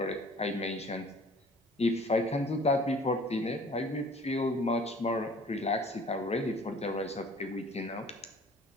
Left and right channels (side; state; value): both; normal; correlation 0.51